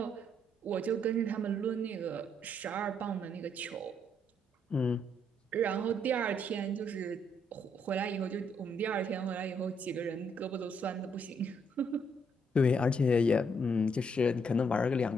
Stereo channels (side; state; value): both; normal; correlation 0.72